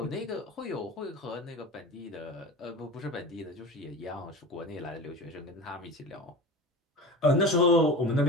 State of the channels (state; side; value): normal; both; correlation 0.32